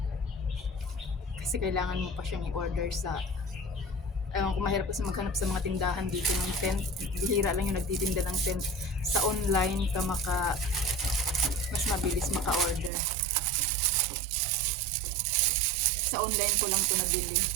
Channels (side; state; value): left; drops out; at 12.9 s